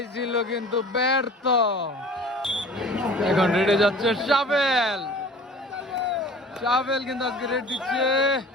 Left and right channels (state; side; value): normal; both; correlation 0.44